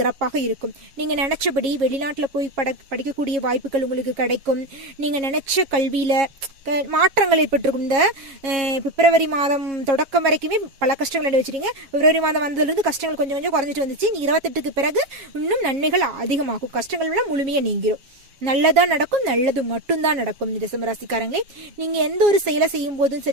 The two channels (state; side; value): late; left; 7.3 ms